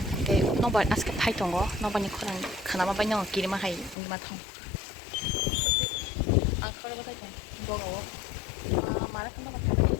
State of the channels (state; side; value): drops out; right; at 4.0 s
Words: 이게 너바 아스케 파이통 거 너바니 코랑 가나마 바냥 끼리마 하이 이마 통 아, 그래 보자. 뭐가 와? 아, 말할 건가